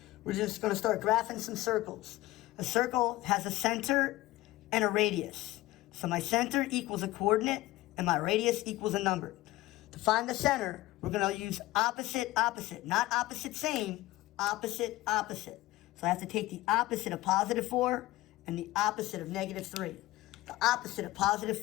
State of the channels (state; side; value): quieter; right; 17.7 dB